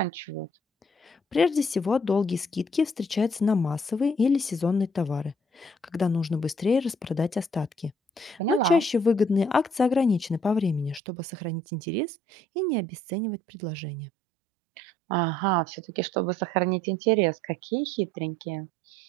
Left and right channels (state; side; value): drops out; left; at 11.0 s